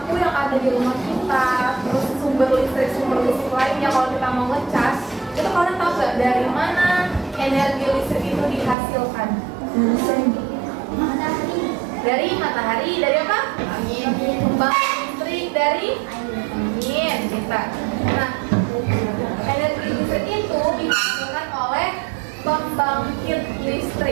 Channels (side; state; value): left; drops out; at 8.8 s